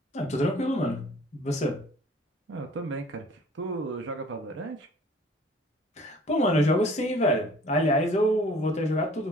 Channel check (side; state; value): both; normal; correlation 0.51